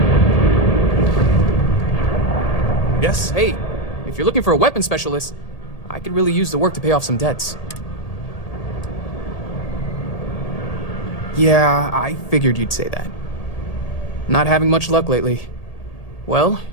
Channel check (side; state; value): right; late; 1.8 ms